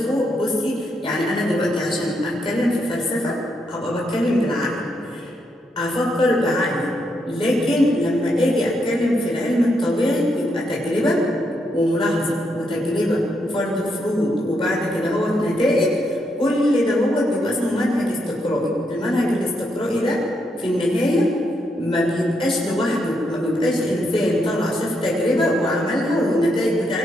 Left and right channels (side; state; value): both; normal; correlation 0.79